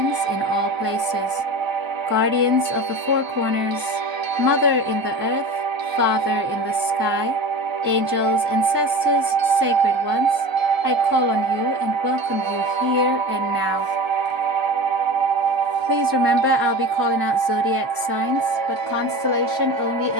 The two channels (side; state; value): left; late; 1.0 ms